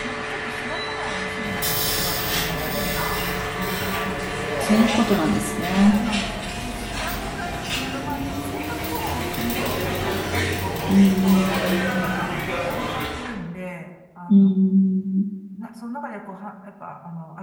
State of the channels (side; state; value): both; identical; correlation 1.00